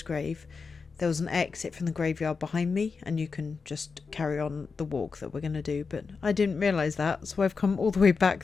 grave, there was an exit from the graveyard behind me, and you can just carry on the walk that we're going to do. But I didn't realise that, so I've come all the way back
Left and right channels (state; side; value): quieter; right; 4.9 dB